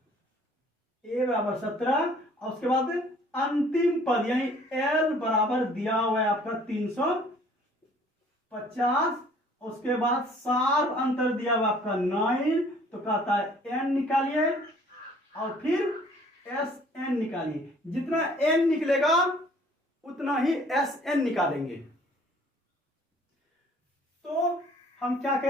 ए बराबर 17, और उसके बाद अंतिम पद यानी एल बराबर दिया हुआ है आपका 350, उसके बाद सार्व अंतर दिया हुआ आपका 9, तो कहता है एन निकालिए और फिर एस एन निकालिए। जितना एन निकलेगा उतना ही एस एन निकालेंगे। तो हम क्या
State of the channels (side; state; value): both; normal; correlation 0.56